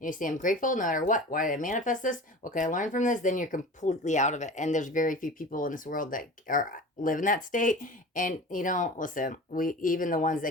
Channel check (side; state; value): both; normal; correlation 0.36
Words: say, I'm grateful no matter what, why did I manifest this, what can I learn from this, then you're completely out of it. And there's very few people in this world that live in that state. And listen, we, even the ones